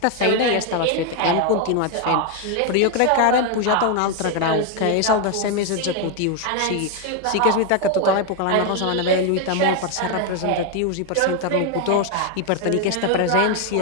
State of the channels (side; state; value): both; different; correlation 0.01